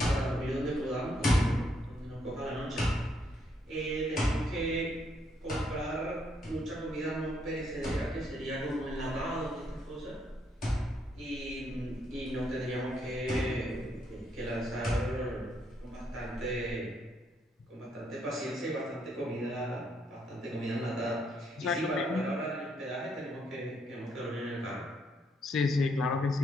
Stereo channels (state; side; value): normal; both; correlation 0.74